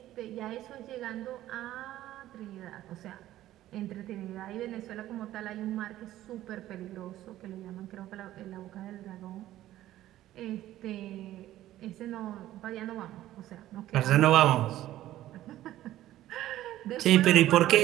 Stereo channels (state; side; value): quieter; left; 14.1 dB